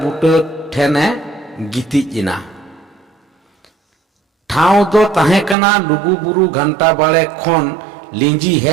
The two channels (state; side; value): drops out; left; at 5.6 s